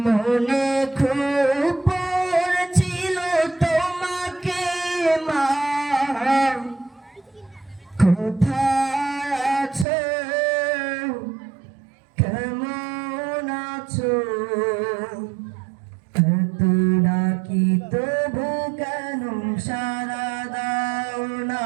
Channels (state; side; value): drops out; left; at 9.9 s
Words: মনে খুব পড়ছিল তোমাকে মা, কোথায় আছো, কেমন আছো, এত ডাকি তবু কেন সাড়া দাও না,